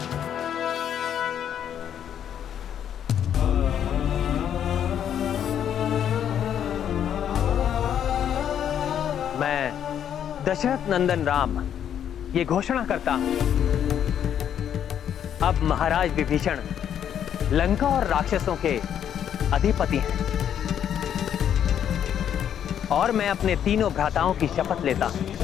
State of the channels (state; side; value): quieter; right; 9.4 dB